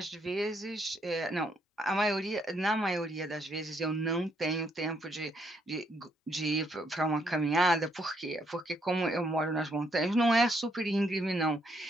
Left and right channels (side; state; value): both; normal; correlation 0.73